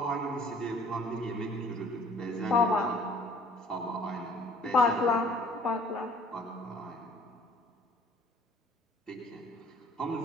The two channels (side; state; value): both; normal; correlation 0.55